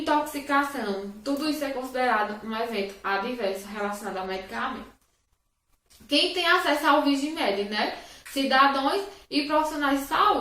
tudo isso é considerado um evento adverso relacionado ao medicamento. Quem tem acesso ao Vigimed, né? Cidadãos e profissionais de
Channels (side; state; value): both; identical; correlation 1.00